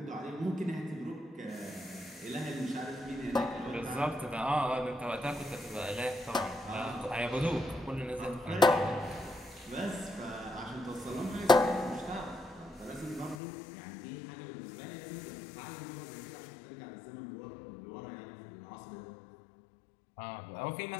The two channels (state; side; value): drops out; right; at 13.4 s